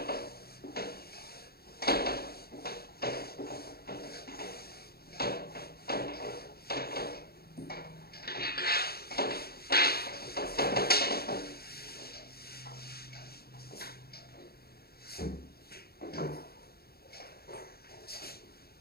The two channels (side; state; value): right; late; 0.45 ms